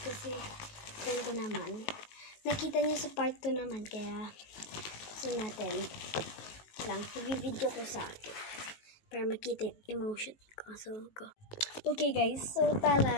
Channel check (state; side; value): late; right; 19 ms